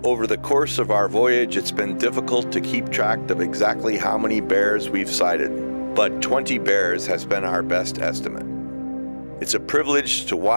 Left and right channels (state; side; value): inverted; both; correlation -1.00